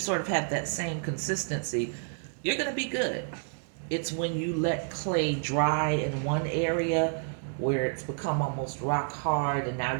of have that same consistency, you're going to be good. It's when you let clay dry in one area where it's become almost rock hard and now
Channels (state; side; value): silent; left; digital silence